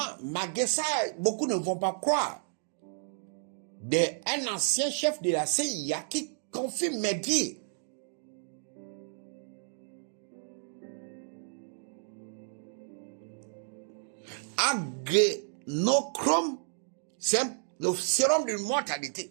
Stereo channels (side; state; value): left; silent; digital silence